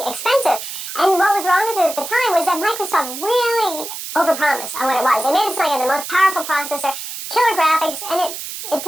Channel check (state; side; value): noise; right; hiss, 8 dB below the sound